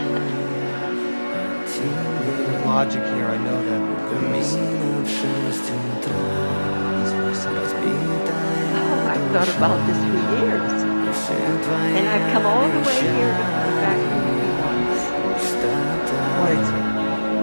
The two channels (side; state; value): both; inverted; correlation -1.00